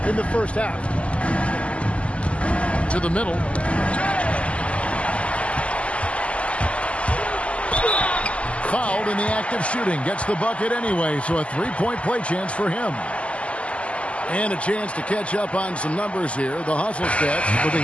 in the first half. To the middle. Fouled in the act of shooting. Gets the bucket anyway, so a 3-point play chance for him. And a chance to catch up on some numbers here. The hustle stats for the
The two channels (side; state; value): right; late; 0.060 ms